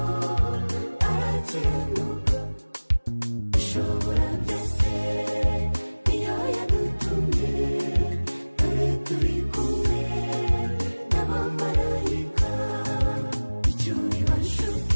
arakiranuka ishobora byose niyo yadutumye dore turi kumwe n'abamarayika icyo biba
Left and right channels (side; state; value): both; inverted; correlation -1.00